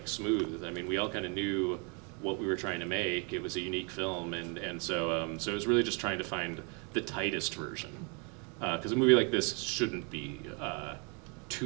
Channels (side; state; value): left; quieter; 34.9 dB